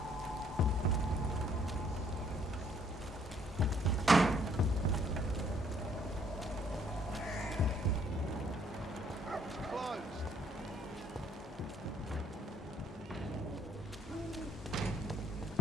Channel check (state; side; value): normal; both; correlation 0.65